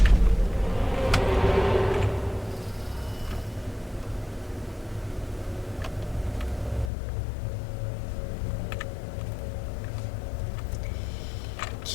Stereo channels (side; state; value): right; drops out; at 6.9 s